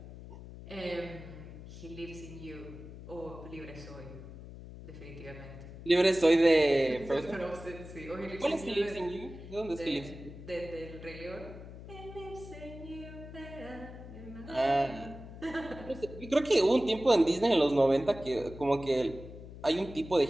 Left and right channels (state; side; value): noise; left; hum, 14 dB below the sound